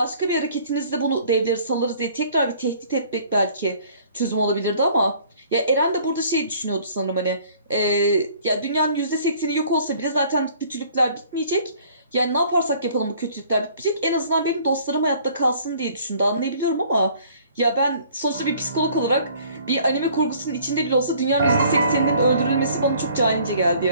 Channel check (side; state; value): both; inverted; correlation -0.55